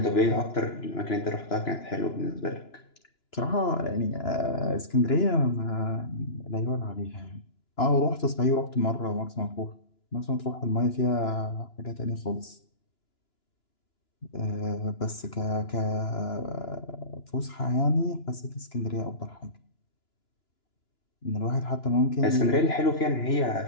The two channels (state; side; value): late; right; 2.9 ms